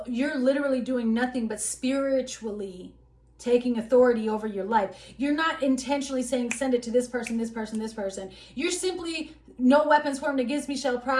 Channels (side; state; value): both; identical; correlation 1.00